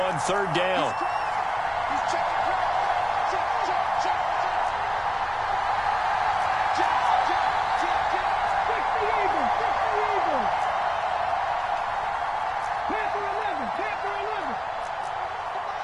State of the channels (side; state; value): both; identical; correlation 1.00